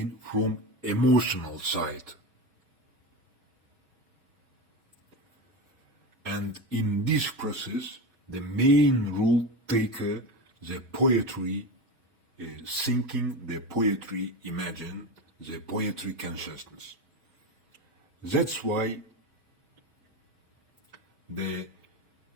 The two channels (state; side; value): late; left; 2.5 ms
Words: from emotional side. And in this process, the main role taker, the poetry thinking, the poetry imagine, the poetry consciousness. That's why the